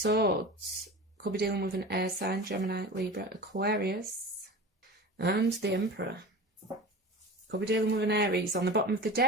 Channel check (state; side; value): normal; both; correlation 0.33